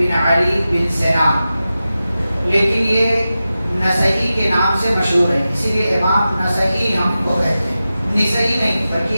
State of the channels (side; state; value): both; inverted; correlation -0.93